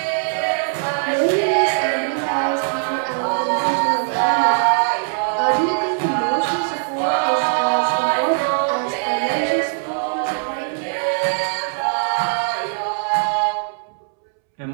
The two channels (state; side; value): silent; left; 65 dB below the other